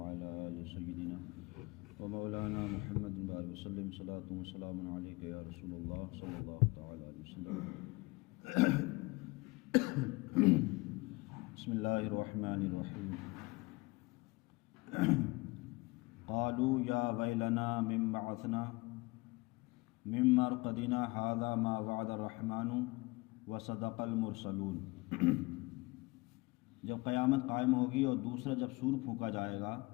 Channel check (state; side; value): quieter; right; 23.9 dB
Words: آل سيدنا ومولانا محمد بارك وسلم صلاة وسلام عليك يا رسول الله صلى الله تعالى عليه وسلم. بسم الله الرحمن الرحيم. قالوا يا ويلنا من بعثنا من مرقدنا هذا ما وعد الرحمن وصدق المرسلون. جب قیامت قائم ہوگی اور دوسرا جب سور پھونکا جائے گا